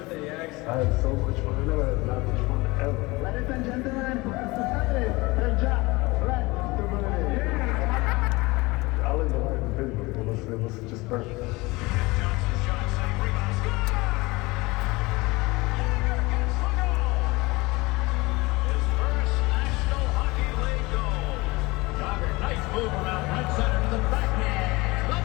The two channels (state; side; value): quieter; right; 22.8 dB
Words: Jags. I had so much fun. I never had that much fun ever. Ladies and gentlemen, hey, Jagr, right, Mr. Birthday. I lived the life in Pittsburgh. It was just perfect. Move around right center to the backhand.